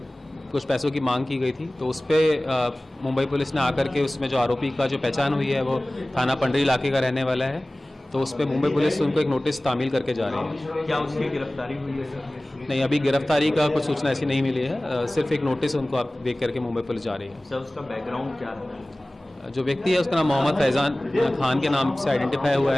कुछ पैसों की मांग की गई थी। तो उस पर मुंबई पुलिस ने आकर के उसमें जो आरोपी का जो पहचान हुई है वो थाना पंडरी इलाके का रहने वाला है, तो उस पर मुंबई पुलिस उनको एक नोटिस तामील करके जा रही है। क्या उसकी गिरफ्तारी हुई है सर? नहीं, अभी गिरफ्तारी का कुछ सूचना ऐसी नहीं मिली है, सिर्फ एक नोटिस उनको आप देख करके मुंबई पुलिस जा रही है। सर उसका बैकग्राउंड क्या है? जो व्यक्ति है उसका नाम मोहम्मद फैजान खान के नाम से आइडेंटिफाई हुआ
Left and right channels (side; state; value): both; normal; correlation 0.98